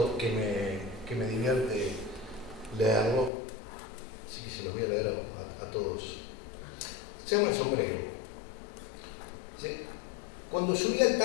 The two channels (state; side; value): drops out; right; at 3.3 s